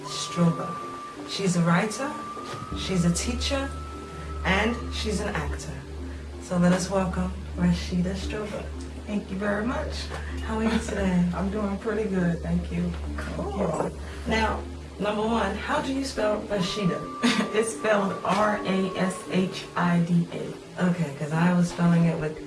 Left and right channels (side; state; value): both; identical; correlation 1.00